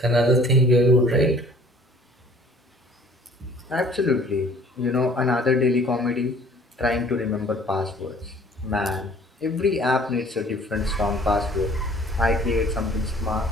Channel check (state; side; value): normal; both; correlation 0.53